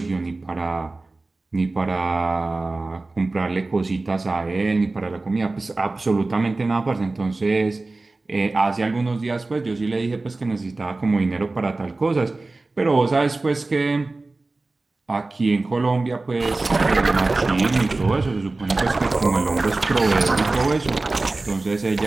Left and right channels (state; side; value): quieter; left; 3.3 dB